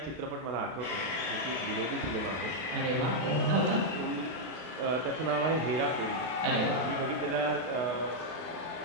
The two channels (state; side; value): late; left; 31 ms